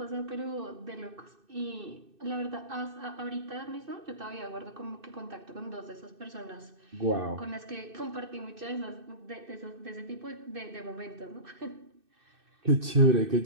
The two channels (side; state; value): left; late; 2.6 ms